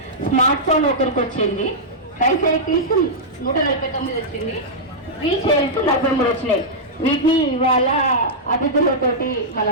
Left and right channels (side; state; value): both; normal; correlation -0.09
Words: Smart phone ఒకరికి వచ్చింది, ట్రైసైకిల్స్ 149 వచ్చింది, వీల్ చైర్స్ 43 వచ్చినాయి. వీటిని ఇవాళ అతిథులతోటి